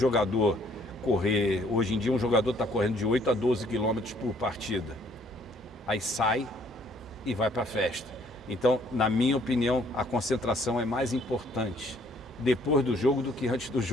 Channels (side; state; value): both; normal; correlation 0.62